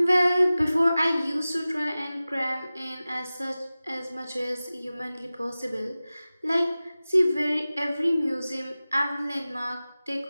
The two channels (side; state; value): both; inverted; correlation -0.97